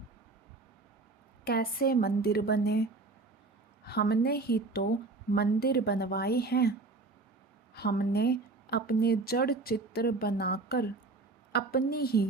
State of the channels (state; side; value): quieter; left; 3.6 dB